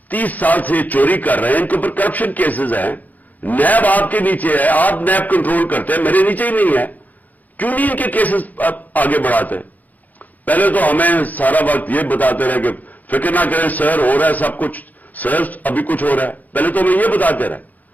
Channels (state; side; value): late; right; 0.081 ms